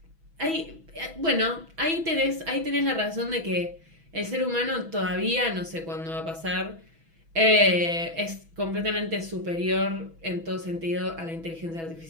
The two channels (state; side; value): late; left; 6.1 ms